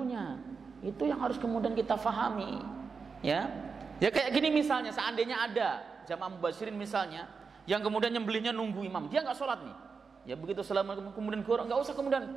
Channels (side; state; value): left; quieter; 5.1 dB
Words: Itu yang harus kemudian kita fahami. Ya kayak gini misalnya, seandainya ada jamaah mubasyirin misalnya yang kemudian nyembelihnya nunggu imam, dia nggak sholat nih, ya begitu assalamualaikum kemudian gorok, nggak usah